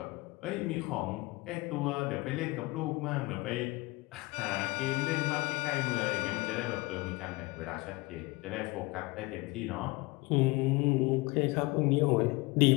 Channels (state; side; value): quieter; right; 23.1 dB